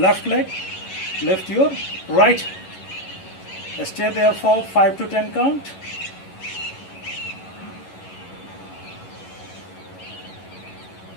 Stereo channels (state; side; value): late; right; 11 ms